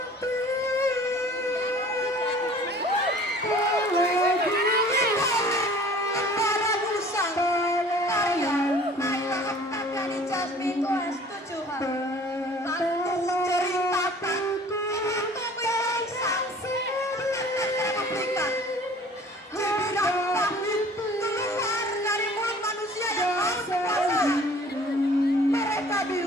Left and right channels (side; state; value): both; normal; correlation 0.49